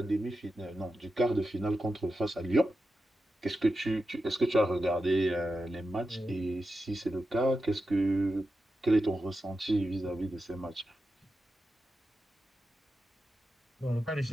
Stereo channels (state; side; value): normal; both; correlation 0.90